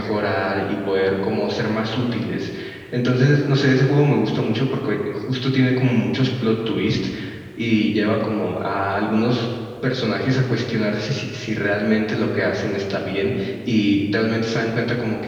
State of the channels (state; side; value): identical; both; correlation 1.00